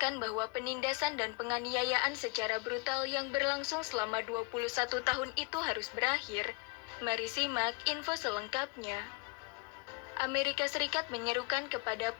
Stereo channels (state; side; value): quieter; right; 28.0 dB